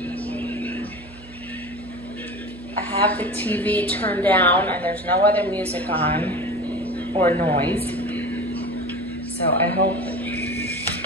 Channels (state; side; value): noise; right; hum, 19 dB below the sound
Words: I have the TV turned down and there's no other music on or noise. So I hope